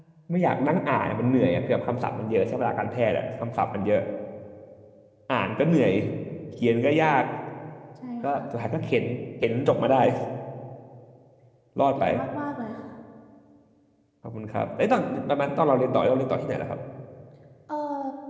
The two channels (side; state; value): both; identical; correlation 1.00